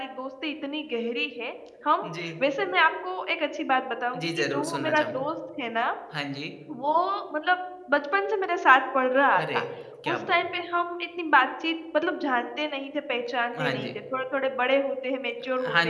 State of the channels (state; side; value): identical; both; correlation 1.00